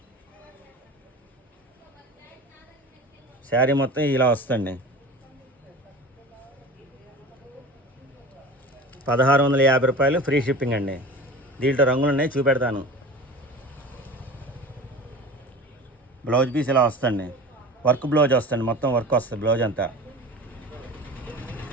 శారీ మొత్తం ఇలా వస్తుంది. 1650 రూపాయలు, ఫ్రీ షిప్పింగ్ అండి. దీంట్లో రంగులు ఉన్నాయి, చూపెడతాను. బ్లౌజ్ పీస్ ఇలా వస్తుంది, వర్క్ బ్లౌజ్ వస్తుంది, మొత్తం వర్క్ వస్తుంది బ్లౌజ్ అంతా.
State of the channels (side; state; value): both; normal; correlation 0.36